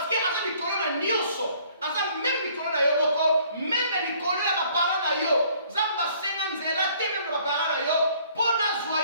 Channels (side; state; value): both; inverted; correlation -0.59